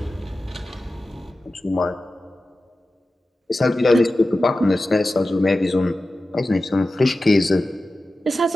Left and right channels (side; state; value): both; normal; correlation 0.94